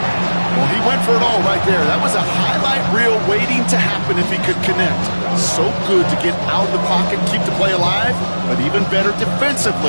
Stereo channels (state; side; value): inverted; both; correlation -1.00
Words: Well, he went for it all right there. That was a highlight reel waiting to happen if he could connect. So good to get out of the pocket, keep the play alive, but even better